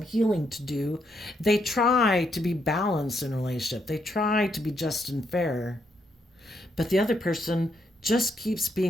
healing to do, they try to be balanced in a relationship. They try to be just and fair. But the other person just keeps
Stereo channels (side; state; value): both; normal; correlation 0.77